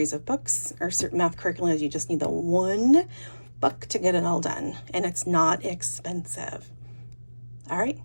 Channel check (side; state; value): both; inverted; correlation -1.00